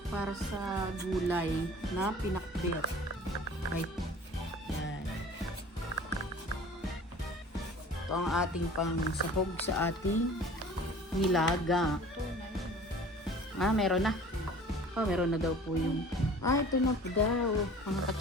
para sa gulay na pinakbet. Right. Yan. Ito ang ating pangsahog sa ating nilaga. Meron na. Meron na daw po yung ito na po daw. Mga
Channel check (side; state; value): both; normal; correlation 0.45